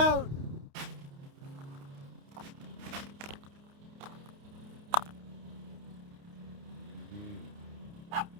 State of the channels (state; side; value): late; left; 29 ms